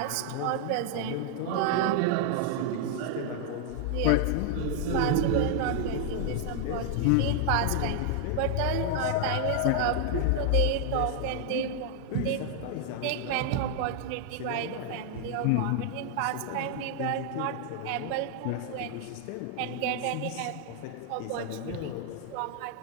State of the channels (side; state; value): both; different; correlation 0.00